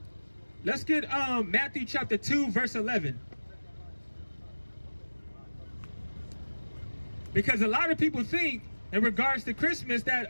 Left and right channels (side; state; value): both; inverted; correlation -1.00